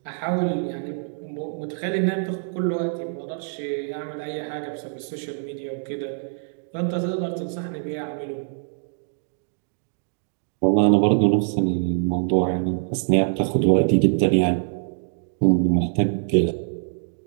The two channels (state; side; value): silent; left; digital silence